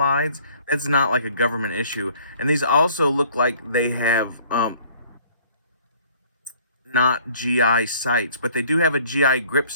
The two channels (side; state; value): both; inverted; correlation -0.57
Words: That's not like a government issue. And these also look like they have not GI sights, but they do have a GI grip